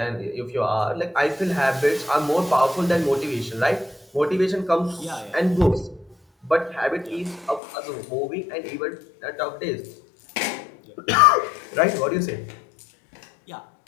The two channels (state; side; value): drops out; right; at 7.6 s